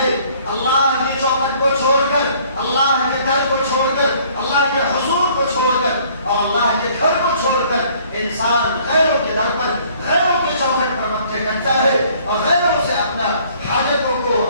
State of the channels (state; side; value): inverted; both; correlation -0.58